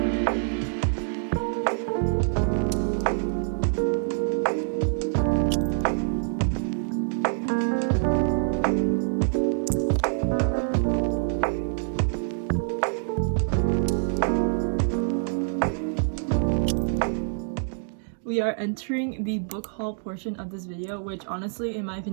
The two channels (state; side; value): silent; left; digital silence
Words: are entering the book haul portion of this video, which honestly, in my